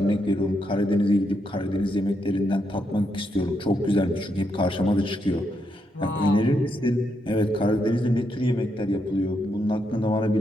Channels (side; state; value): both; normal; correlation 0.80